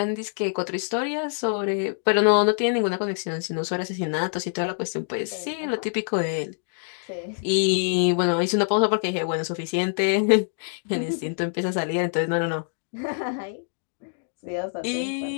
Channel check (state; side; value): silent; right; digital silence